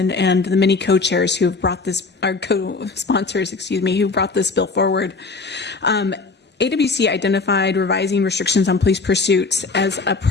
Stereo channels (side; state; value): right; quieter; 4.1 dB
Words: and the many co-chairs who have brought this, our co-sponsors, who brought this bill forward. AWC identified revising restrictions on police pursuits as a